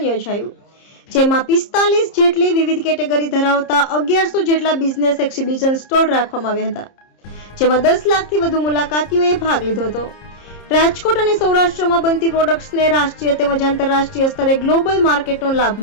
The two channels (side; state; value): right; late; 30 ms